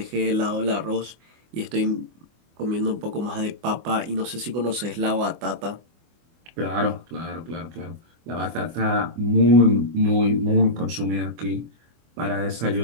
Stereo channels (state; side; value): late; left; 24 ms